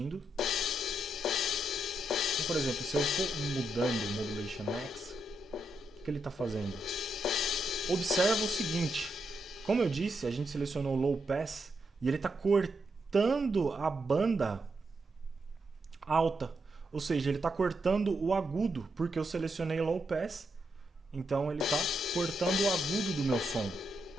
Então, por exemplo, se eu for mudando o Modulation Max, o que ele está fazendo? Observa o seguinte, como eu disse, a gente selecionou Low Pass e ele está cortando a banda alta, ou seja, ele está cortando o agudo, porque eu selecionei Low Pass, então ele está cortando o agudo do meu som.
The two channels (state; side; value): normal; both; correlation 0.82